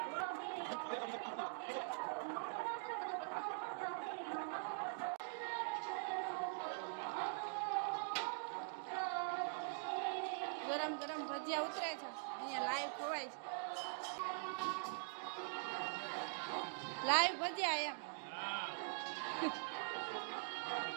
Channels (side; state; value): left; silent; digital silence